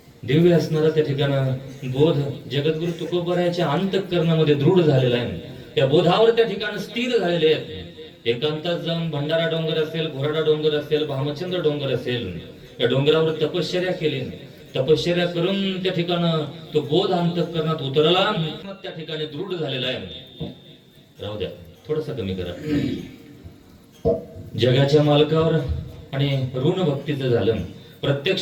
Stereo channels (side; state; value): both; identical; correlation 1.00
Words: दिव्य असणारा त्या ठिकाणं बोध जगद्गुरु तुकोबरायाच्या अंतःकरणामध्ये दृढ झालेला आहे. त्या बोधावर त्या ठिकाणी स्थिर झालेले आहेत. एकांतात जाऊन भंडारा डोंगर असेल, घोराडा डोंगर असेल, भामचंद्र डोंगर असेल, या डोंगरावर तपश्चर्या केली. तपश्चर्या करून त्या ठिकाणं तो बोध अंतःकरणात उतरला, त्या ठिकाणी दृढ झालेला आहे. राहू द्या, थोडस कमी करा. जगाच्या मालकावर आणि ऋण भक्तीचं झालं.